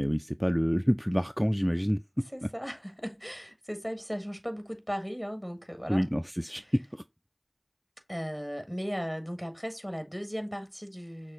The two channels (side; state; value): both; identical; correlation 1.00